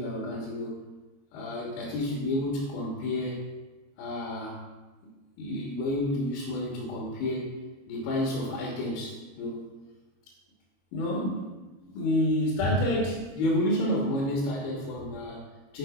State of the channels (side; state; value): right; late; 22 ms